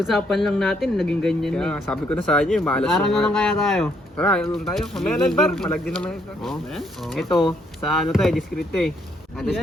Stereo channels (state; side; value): normal; both; correlation 0.71